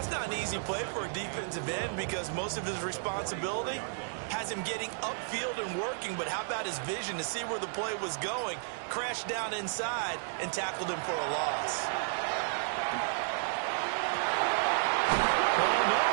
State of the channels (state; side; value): silent; left; digital silence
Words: that's not an easy play for a defensive end because most of his responsibility has him getting upfield and working. But how about his vision to see where the play was going, crashed down inside, and tackled him for a loss? Oh, no,